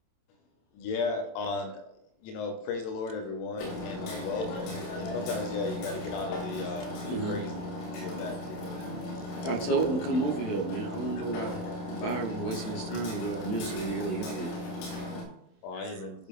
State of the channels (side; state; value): right; late; 27 ms